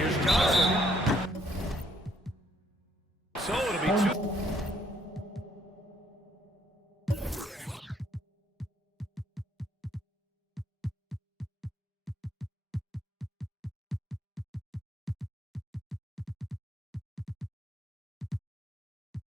Here's Johnson. So it'll be 2.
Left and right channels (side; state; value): both; normal; correlation 0.68